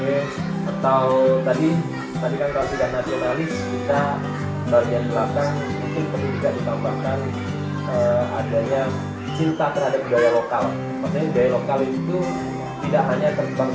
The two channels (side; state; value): both; identical; correlation 1.00